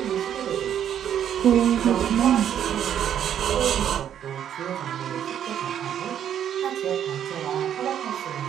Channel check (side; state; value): left; quieter; 9.7 dB